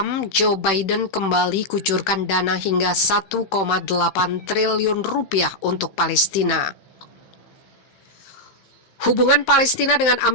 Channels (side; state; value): right; late; 15 ms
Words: Joe Biden kembali kucurkan dana hingga 1,8 triliun rupiah untuk Palestina. Hubungan Palestina dengan